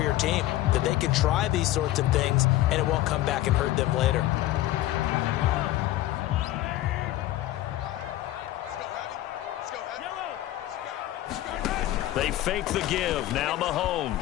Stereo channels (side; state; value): right; quieter; 15.0 dB